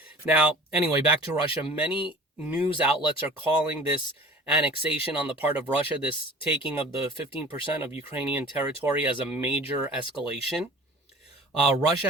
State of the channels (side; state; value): both; normal; correlation 0.43